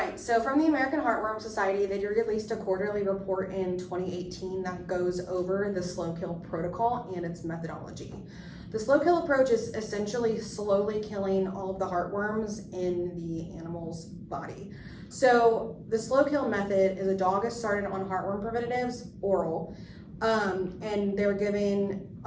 so from the American Heartworm Society, they released a quarterly report in 2018 that goes over the slow kill protocol and its methodology. The slow kill approach is essentially slowly killing all of the heartworms in the animal's body. So the slow kill method is a dog is started on heartworm preventatives, oral, and they're given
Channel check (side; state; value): both; identical; correlation 1.00